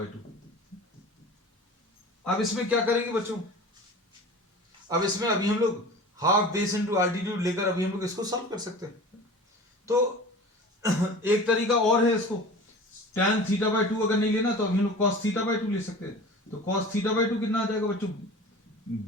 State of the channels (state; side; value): normal; both; correlation 0.38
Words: 2। अब इसमें क्या करेंगे बच्चों, अब इसमें अभी हम लोग हाफ बेस इनटू एल्टीट्यूड लेकर अभी हम लोग इसको सॉल्व कर सकते हैं। तो एक तरीका और है इसको, tan थीटा बाय 2 अगर नहीं लेना तो अभी हम लोग cos थीटा बाय 2 ले सकते हैं। तो cos थीटा बाय 2 कितना आ जाएगा बच्चों,